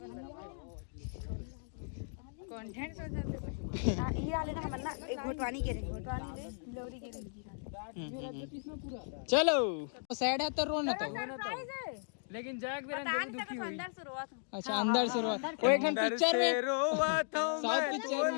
कंटेंट ये वाले ना हम ना घोटवानी के लवरी के चलो सैड है तो रोना तो लेकिन जग दुखी हुई। अच्छा अंदर से रोआ वो एक पिक्चर में साउथ पिक्चर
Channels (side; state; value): right; silent; digital silence